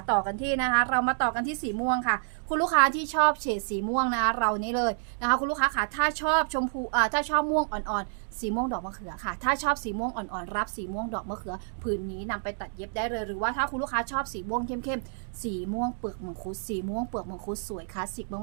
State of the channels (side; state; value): left; silent; digital silence